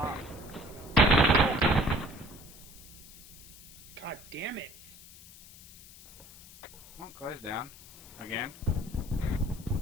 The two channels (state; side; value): noise; left; hiss, 19 dB below the sound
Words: God damn it. Come on, close down. Again.